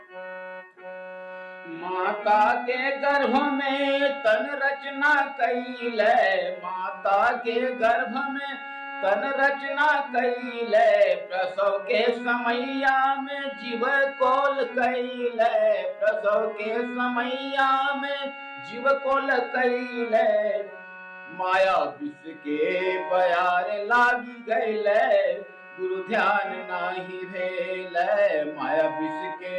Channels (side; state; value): both; identical; correlation 1.00